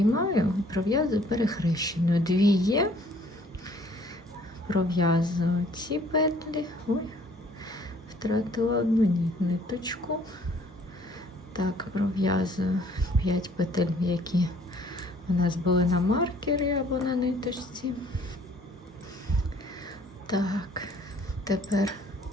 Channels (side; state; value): both; normal; correlation 0.58